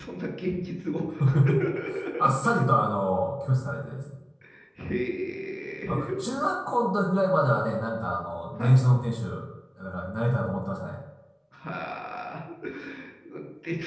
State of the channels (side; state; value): both; identical; correlation 1.00